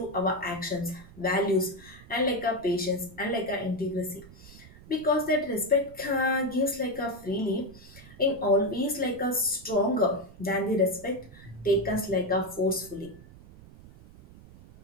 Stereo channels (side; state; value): right; noise; rumble, 20 dB below the sound